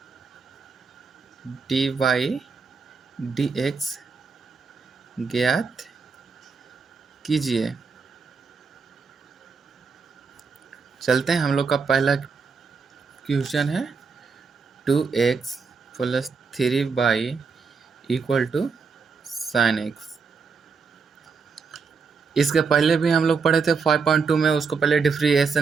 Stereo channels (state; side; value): quieter; left; 5.2 dB